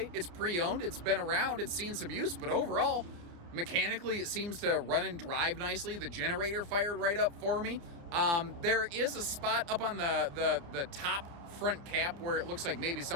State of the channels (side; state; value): left; late; 29 ms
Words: It's pre-owned. It's been around. It's seen some use. But overall, mechanically, it seems to run and drive nicely. The generator fired right up for me. There is a spot up on the top front cap where it looks like maybe